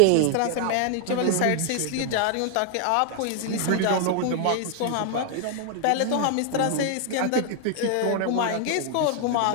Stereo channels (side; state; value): both; different; correlation 0.00